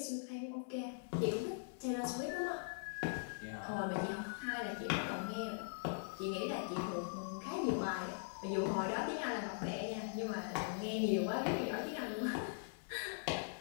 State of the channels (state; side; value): silent; right; 50 dB below the other